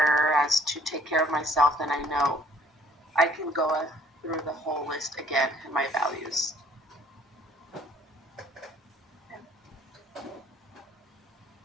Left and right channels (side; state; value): both; normal; correlation 0.58